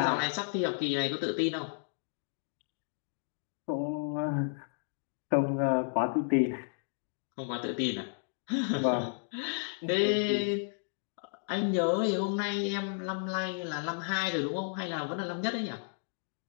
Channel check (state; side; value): silent; right; digital silence